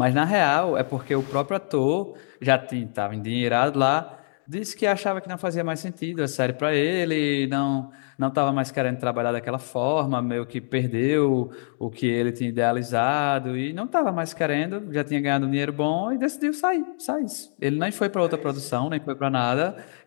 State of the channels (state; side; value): silent; right; digital silence